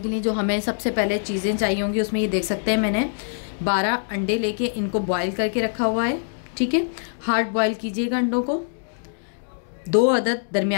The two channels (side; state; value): right; silent; digital silence